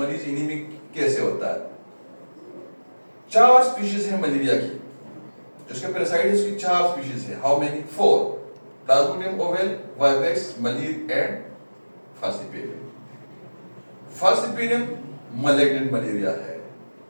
एनीमिक कैसे होता है? 4 स्पीशीज है मलेरिया की, जिसके पैरासाइट्स की 4 स्पीशीज है। How many? 4, plasmodium ovale, vivax, malaria and falciparum. Falciparum malignant malaria है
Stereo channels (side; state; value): both; inverted; correlation -1.00